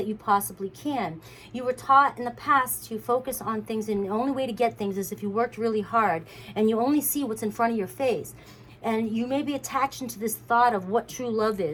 you possibly can. You were taught in the past to focus on things, and the only way to get things is if you worked really hard, and you only see what's in front of your face. And you may be attached into this thought of what true love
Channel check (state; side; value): identical; both; correlation 1.00